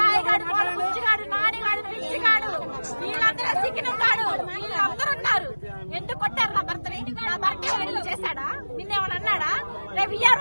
కోళ్ళ బుజ్జిగాడు, నానిగాడు, పిచ్చిగాడు వీళ్ళందరూ సిక్కినం గాడు వీళ్ళందరూ ఉన్నారు. ఎందుకు కొట్టారు నా భర్తని? నా భర్త ఏమైనా చేశాడా? నిన్నేమన్నా అన్నాడా? రేపు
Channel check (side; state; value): both; inverted; correlation -1.00